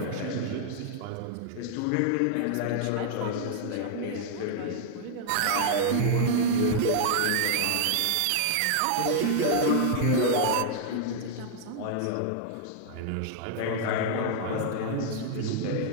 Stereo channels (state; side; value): different; both; correlation -0.01